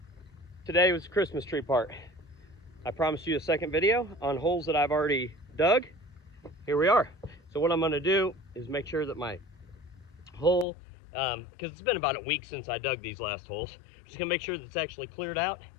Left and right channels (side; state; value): right; drops out; at 10.7 s